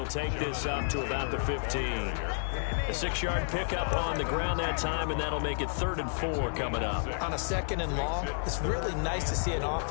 take this up to about the 15. A 6-yard pickup on the ground that time, and that'll make it 3rd and 4 coming up. On a 2nd and long, it's really nice to see an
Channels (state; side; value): silent; right; 57 dB below the other